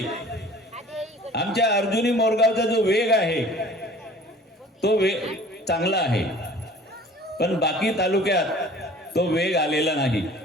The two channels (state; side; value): normal; both; correlation 0.48